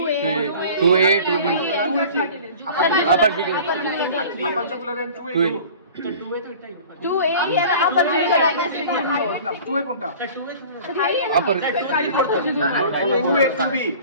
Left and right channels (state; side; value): inverted; both; correlation -0.43